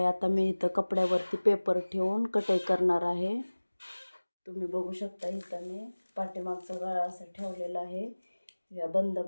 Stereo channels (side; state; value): both; inverted; correlation -1.00